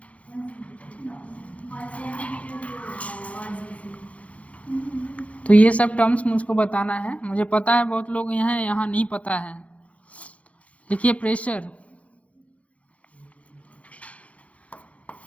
तो ये सब टर्म्स मुझको बताना है, मुझे पता है बहुत लोग यहाँ नहीं पता है। देखिए प्रेशर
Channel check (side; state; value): right; late; 0.064 ms